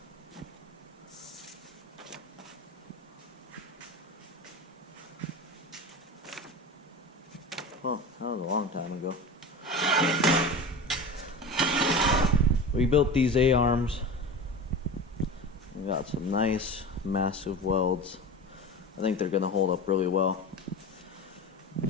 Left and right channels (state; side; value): normal; both; correlation 0.30